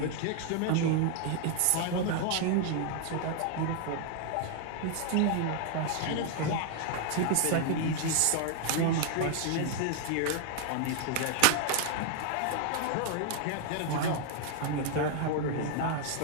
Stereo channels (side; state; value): both; different; correlation 0.00